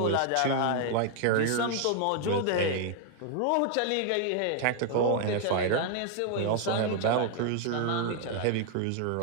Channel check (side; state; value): both; different; correlation 0.00